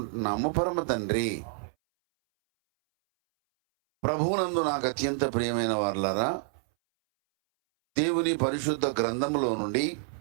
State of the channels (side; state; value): left; silent; 59 dB below the other